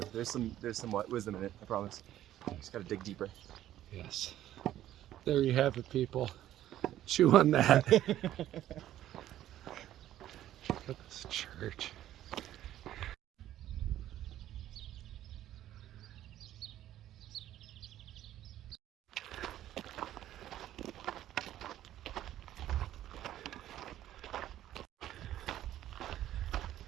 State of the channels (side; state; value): left; quieter; 12.7 dB